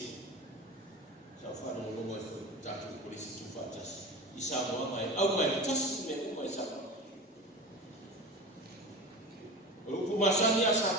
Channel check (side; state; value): both; normal; correlation 0.31